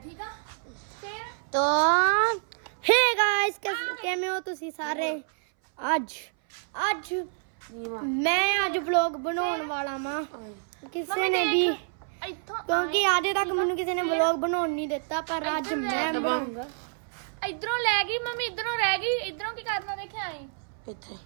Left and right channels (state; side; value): silent; left; 59 dB below the other